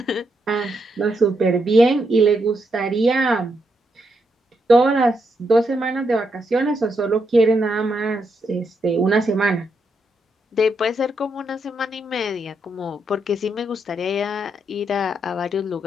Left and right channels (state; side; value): normal; both; correlation 0.80